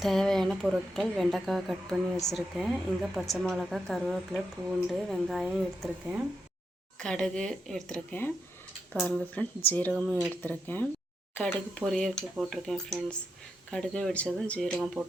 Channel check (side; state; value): both; normal; correlation 0.83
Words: தேவையான பொருட்கள்: வெண்டைக்காய் கட் பண்ணி வச்சுருக்கேன். இங்கே பச்சை மிளகா, கருவேப்பிலை, பூண்டு, வெங்காயம் எடுத்திருக்கேன். கடுகு எடுத்திருக்கேன். பாருங்கள் ஃப்ரெண்ட்ஸ், ஜீரகமும் எடுத்திருக்கேன். கடுகு பொரியலுக்கு போட்டிருக்கேன் ஃப்ரெண்ட்ஸ். கடுகு வெடித்ததும் ஜீரகம்